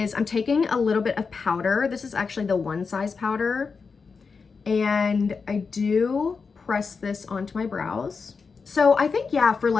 I'm taking a little bit of powder. This is actually the One Size powder, And I do press this onto my brows. So I think, yeah, for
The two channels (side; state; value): right; quieter; 5.1 dB